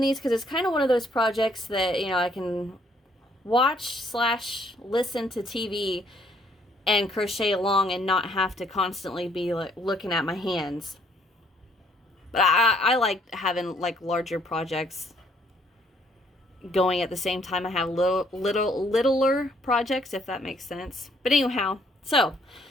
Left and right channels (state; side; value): normal; both; correlation 0.66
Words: because it's kind of one of those projects that, you know, I can watch/listen to TV and crochet along and not have to constantly be like looking at my hands. But I like having like larger projects going at the same time I have littler projects, if that makes sense. But anyhow, so